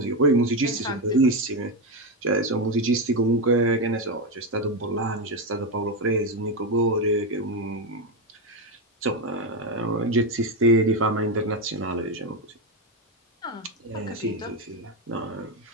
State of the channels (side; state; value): both; normal; correlation 0.09